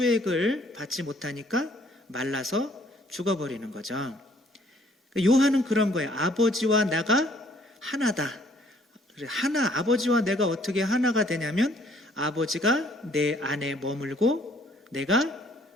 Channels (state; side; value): normal; both; correlation 0.61